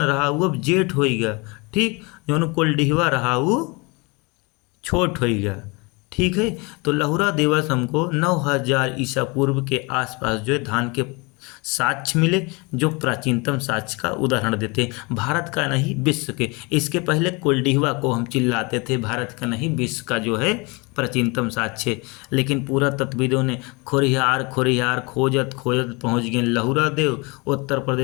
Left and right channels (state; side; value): quieter; right; 28.0 dB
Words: रहा वो अब जेठ हो गया। ठीक, जवन कुलडीहवा रहा वो छोट हो गया। ठीक है, तो लहुरा देवस हमको 9000 ईसा पूर्व के आसपास जो है धान के साक्ष्य मिले, जो प्राचीनतम साक्ष्य का उदाहरण देते हैं। भारत का नहीं विश्व के। इसके पहले कुलडीहवा को हम चिल्लाते थे भारत का नहीं विश्व का जो है प्राचीनतम साक्ष्य, लेकिन पूरा तत्विदों ने खोरिहार खोरिहार खोजत खोजत पहुँच गए लहुरा देव उत्तर